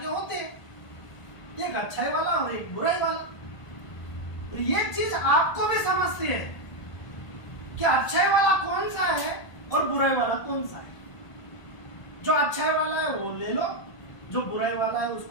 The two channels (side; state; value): right; late; 1.6 ms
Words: होते हैं, एक अच्छाई वाला और एक बुराई वाला। तो ये चीज आपको भी समझती है कि अच्छाई वाला कौन सा है और बुराई वाला कौन सा है। जो अच्छाई वाला है वो ले लो, जो बुराई वाला है